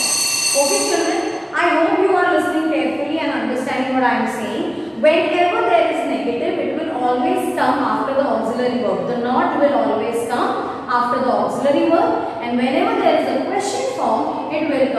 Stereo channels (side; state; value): both; identical; correlation 1.00